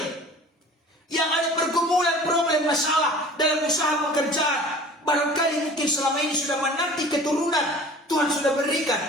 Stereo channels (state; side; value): normal; both; correlation 0.44